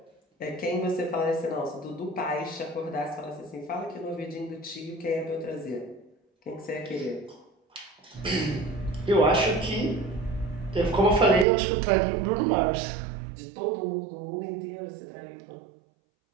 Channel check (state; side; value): drops out; left; at 11.5 s